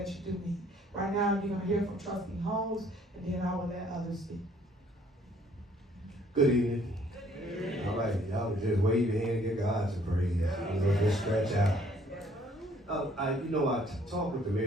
you do need. Right now, you're going to hear from Trustee Holmes, and then I will let others speak. Good evening. Good evening. All right, y'all just wave your hand and give God some praise. Just stretch out. I talked with the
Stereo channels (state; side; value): normal; both; correlation 0.61